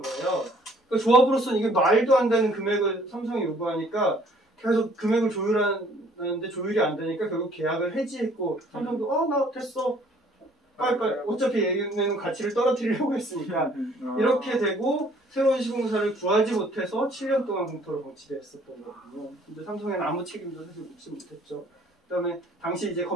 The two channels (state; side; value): normal; both; correlation 0.59